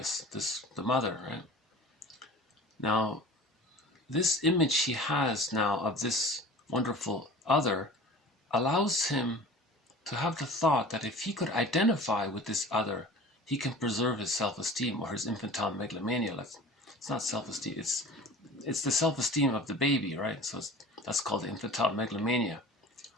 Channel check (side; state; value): both; normal; correlation 0.41